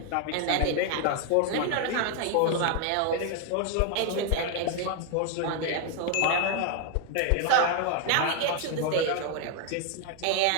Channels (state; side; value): different; both; correlation 0.00